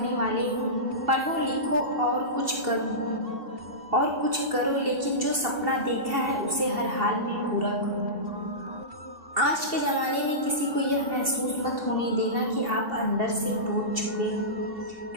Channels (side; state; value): left; late; 2.7 ms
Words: वाले हों, पढ़ो लिखो और कुछ करो, लेकिन जो सपना देखा है उसे हर हाल में पूरा करो। आज के ज़माने में किसी को यह महसूस मत होने देना कि आप अंदर से टूट चुके हैं,